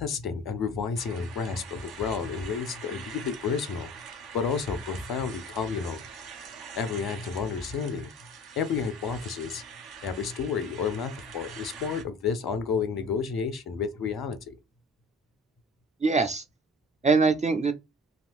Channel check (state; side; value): normal; both; correlation 0.44